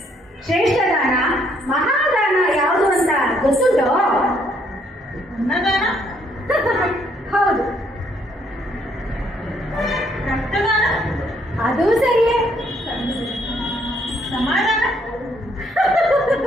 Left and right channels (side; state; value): both; normal; correlation 0.69